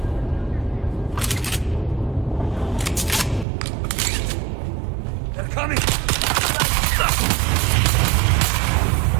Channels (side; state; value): left; drops out; at 3.5 s